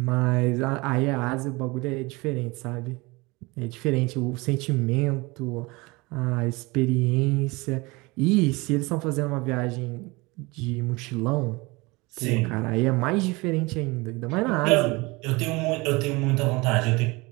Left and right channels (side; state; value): left; quieter; 24.3 dB